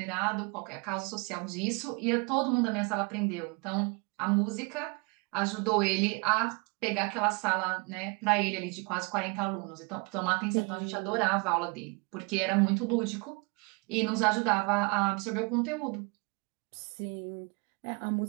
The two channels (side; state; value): left; quieter; 30.5 dB